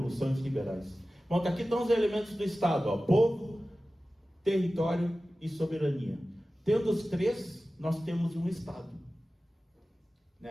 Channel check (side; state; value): both; normal; correlation 0.96